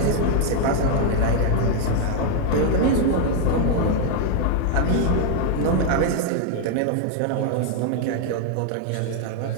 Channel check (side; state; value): both; different; correlation 0.01